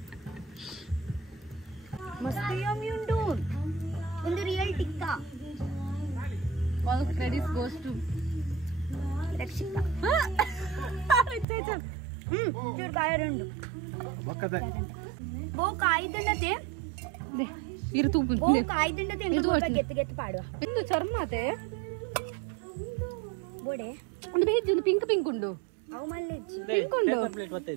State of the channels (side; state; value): left; drops out; at 11.5 s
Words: ಮಸ್ತ್ ಯಮ್ಮಿ ಉಂಟು ಒಂದು real tikka all credits goes to Rakshita ಚೂರು ಕಾಯರುಂಡು ಬಕ್ಕದ ಬೋ ಕಾಯ್ದಂಡತೆ ಇರು ತೂಪು ಬೋ ಕಾಯ್ದಂಡತೆ ಎಂಗ ಸ್ವಲ್ಪ ಗೆತ್ತು ಗೆತ್ತು ಪಾಡುವ ಇಂದು ಚರ್ಮತೆ ಬೋಡೆ ಒಂದು ಬೇಜ್ ಒಂದು ಪಿಂಕ್ ಉಂಡು ಅವು ಮಲ್ಲೆಜ್ಜಿ ಪಿಂಕ್ ಉಂಡು